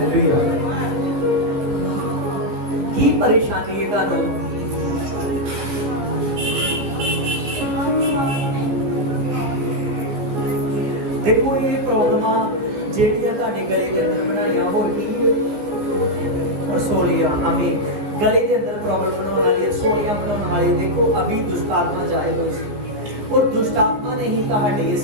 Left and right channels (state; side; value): late; left; 15 ms